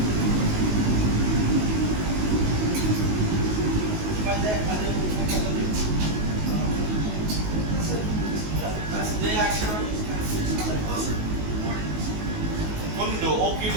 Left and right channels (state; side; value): late; left; 19 ms